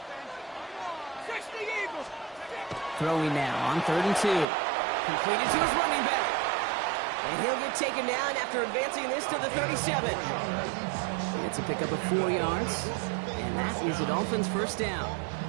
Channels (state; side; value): drops out; left; at 4.5 s